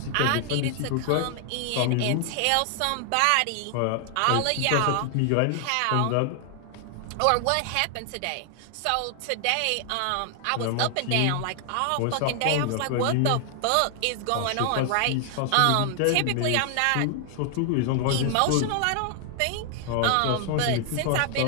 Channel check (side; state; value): both; different; correlation 0.00